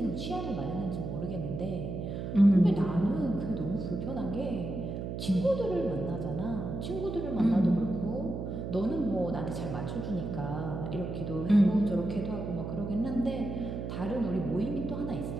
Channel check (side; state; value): right; noise; hum, 5 dB below the sound